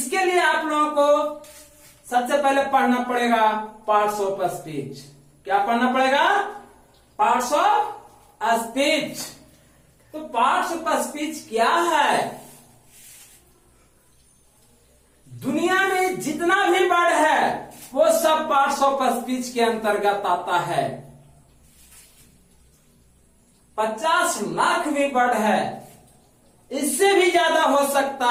लिए आप लोगों को सबसे पहले पढ़ना पड़ेगा पार्ट्स ऑफ स्पीच। क्या पढ़ना पड़ेगा? Parts of speech. तो पार्ट्स ऑफ स्पीच क्या है? दुनिया में जितना भी वर्ड है वो सब पार्ट्स ऑफ स्पीच के अंतर्गत आता है। 50 लाख भी वर्ड है, इससे भी ज्यादा हो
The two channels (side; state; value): both; identical; correlation 1.00